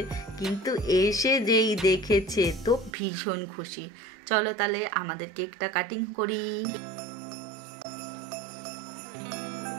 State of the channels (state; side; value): drops out; left; at 3.0 s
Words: কিন্তু এসে যেই দেখেছে তো ভীষণ খুশি। চলো তাহলে আমাদের কেকটা কাটিং করি।